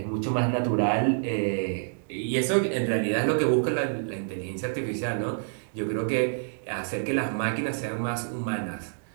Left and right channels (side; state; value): left; silent; digital silence